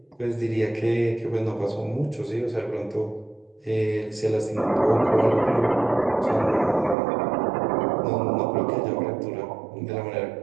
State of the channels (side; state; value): left; drops out; at 7.0 s